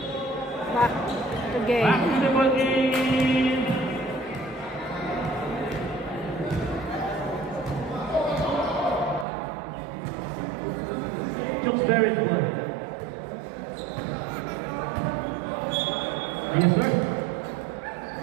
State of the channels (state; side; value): drops out; left; at 9.2 s